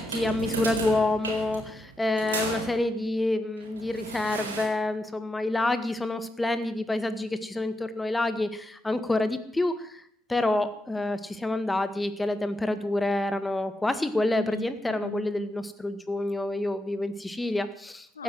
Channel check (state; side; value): normal; both; correlation 0.85